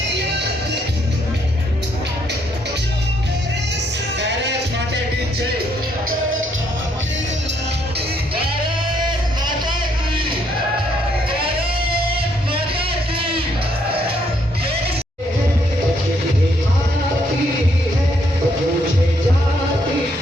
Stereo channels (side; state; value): both; normal; correlation 0.72